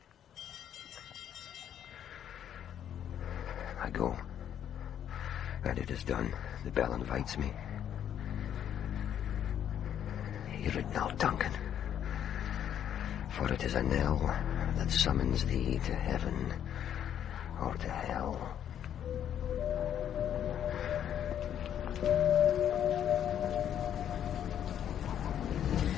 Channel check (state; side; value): quieter; right; 9.8 dB